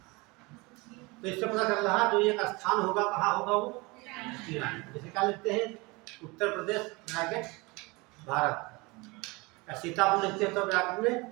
तो इससे पता चल रहा है जो एक स्थान होगा कहाँ होगा वो, ईरान। जैसे क्या लिखते हैं, उत्तर प्रदेश ब्रैकेट भारत, सीतापुर लिखते हैं तो ब्रैकेट में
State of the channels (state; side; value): quieter; left; 25.2 dB